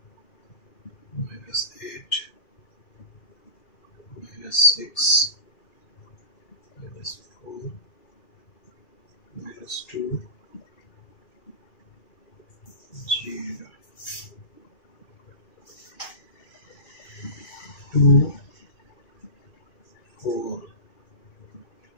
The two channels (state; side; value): late; right; 2.4 ms